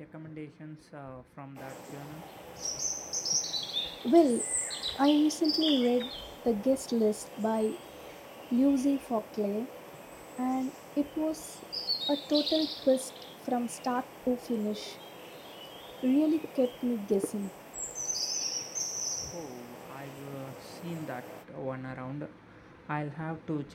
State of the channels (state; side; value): identical; both; correlation 1.00